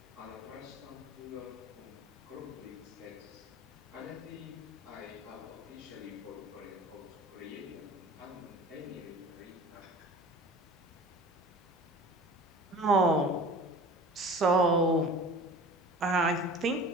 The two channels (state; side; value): normal; both; correlation 0.41